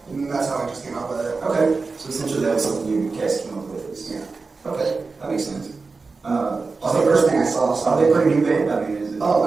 And that's how I just came up with it. Okay. So essentially that was something you guys came up with. Yeah. Okay. That makes sense. That's the first thing I saw. So Are they pretty new band? I mean, is it? Oh,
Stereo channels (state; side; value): quieter; left; 4.2 dB